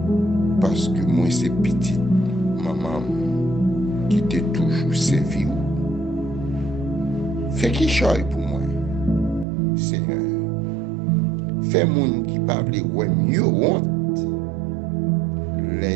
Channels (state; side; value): drops out; left; at 9.5 s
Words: Parce que moi, c'est petite maman qui t'est toujours servi. Fais qui choisit pour moi, Seigneur. Fais moun qui parle ouais mieux honte.